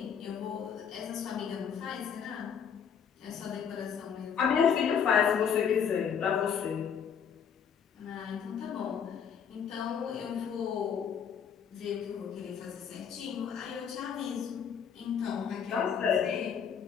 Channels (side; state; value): right; quieter; 7.5 dB